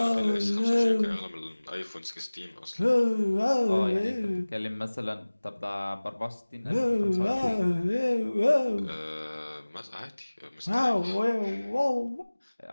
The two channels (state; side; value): inverted; both; correlation -1.00